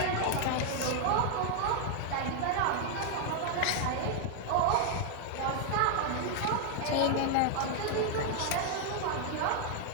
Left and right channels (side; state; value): both; different; correlation 0.00